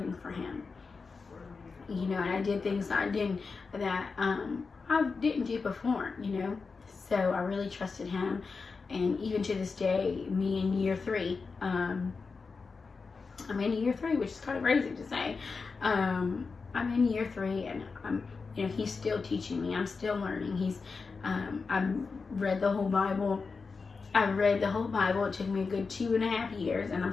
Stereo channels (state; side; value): quieter; right; 4.6 dB